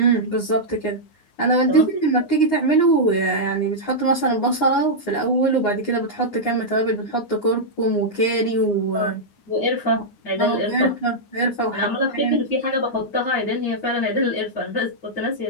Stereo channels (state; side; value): late; right; 9.6 ms